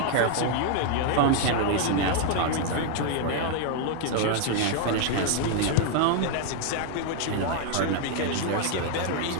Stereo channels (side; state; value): both; different; correlation 0.00